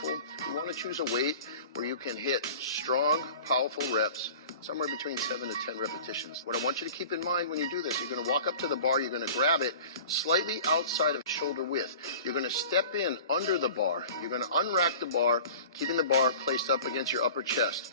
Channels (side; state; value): both; inverted; correlation -0.41